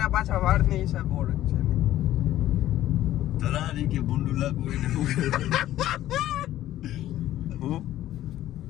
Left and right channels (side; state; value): right; quieter; 13.6 dB